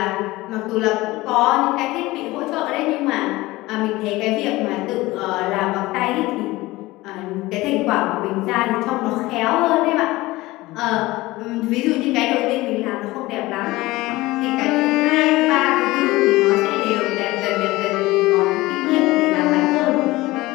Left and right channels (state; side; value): quieter; right; 19.4 dB